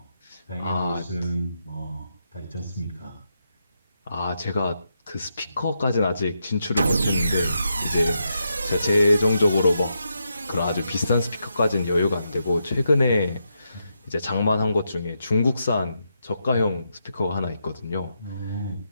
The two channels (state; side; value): inverted; both; correlation -0.83